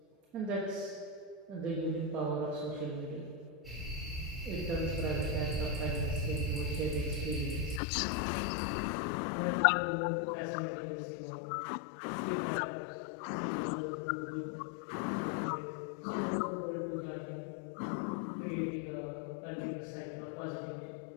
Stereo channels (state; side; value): drops out; right; at 7.8 s